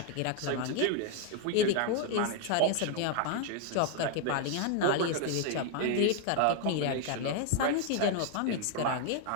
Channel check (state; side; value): different; both; correlation 0.00